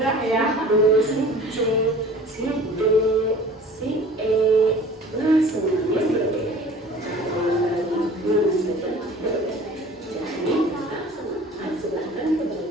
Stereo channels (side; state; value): both; normal; correlation 0.45